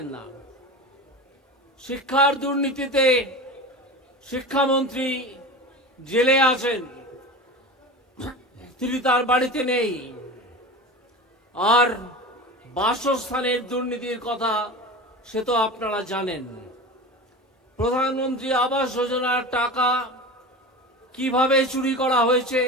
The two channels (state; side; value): normal; both; correlation 0.30